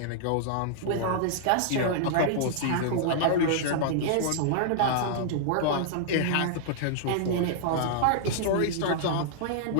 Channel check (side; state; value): both; different; correlation -0.01